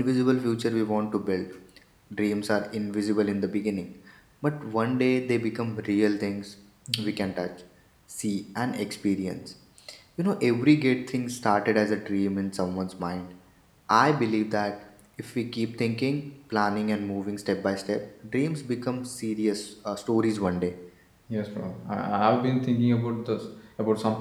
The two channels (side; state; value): both; identical; correlation 1.00